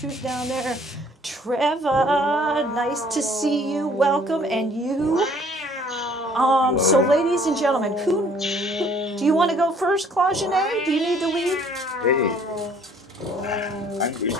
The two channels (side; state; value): both; normal; correlation 0.58